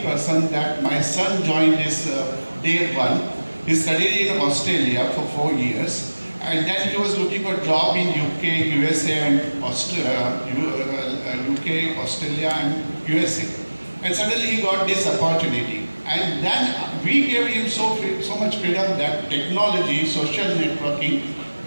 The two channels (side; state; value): both; inverted; correlation -1.00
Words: person that my son joined this day one. He studied in Australia for 4 years. And then he was looking for a job in UK, USA and UK, Australia and USA. And suddenly he got this opportunity. And then we gave him so much freedom that technology, social networking,